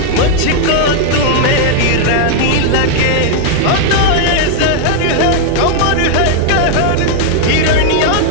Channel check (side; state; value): both; different; correlation 0.00